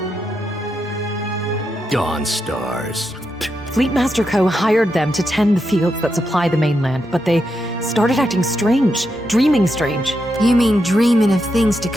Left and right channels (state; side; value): normal; both; correlation 0.84